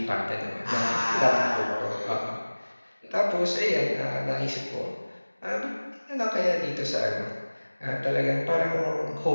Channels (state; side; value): inverted; both; correlation -1.00